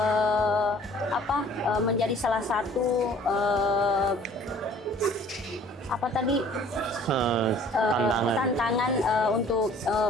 menjadi salah satu apa tadi Tantangan. tantangan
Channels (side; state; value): both; normal; correlation 0.52